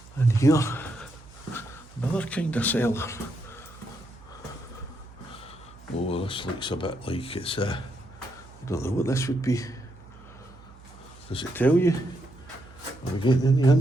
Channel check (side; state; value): right; noise; hum, 21 dB below the sound